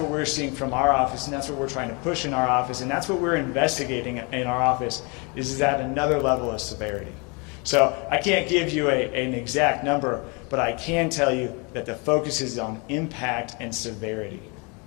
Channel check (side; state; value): right; quieter; 31.3 dB